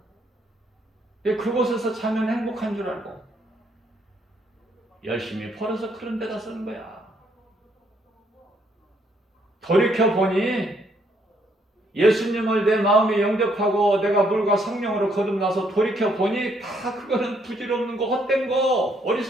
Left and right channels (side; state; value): both; normal; correlation 0.70